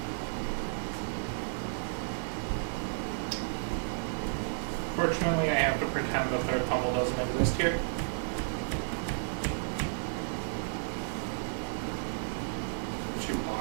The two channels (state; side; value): silent; left; digital silence